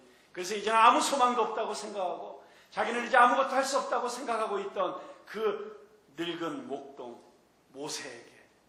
그래서 이제는 아무 소망도 없다고 생각하고 자기는 이제 아무것도 할 수 없다고 생각하고 있던 그 늙은 목동 모세에게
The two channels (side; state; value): both; identical; correlation 1.00